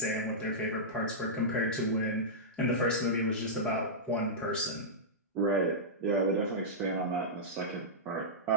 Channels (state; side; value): normal; both; correlation -0.12